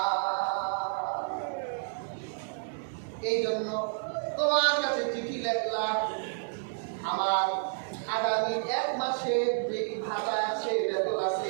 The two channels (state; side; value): silent; left; digital silence